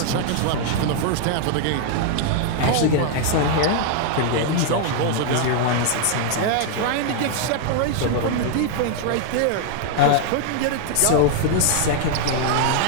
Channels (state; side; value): different; both; correlation 0.00